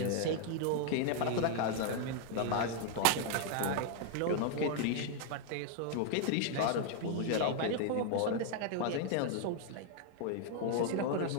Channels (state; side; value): different; both; correlation 0.00